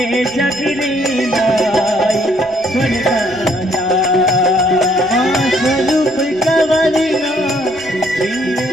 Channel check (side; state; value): right; noise; rumble, 25 dB below the sound